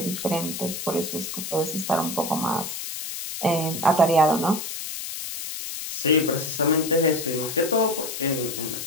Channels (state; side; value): noise; left; hiss, 6 dB below the sound